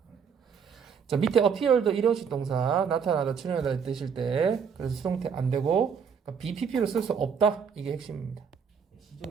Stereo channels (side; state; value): left; quieter; 6.7 dB